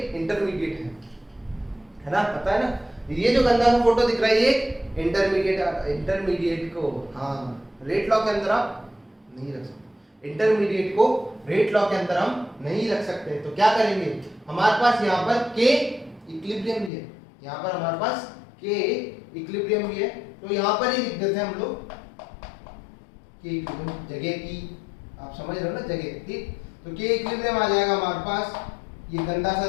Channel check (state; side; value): drops out; right; at 16.9 s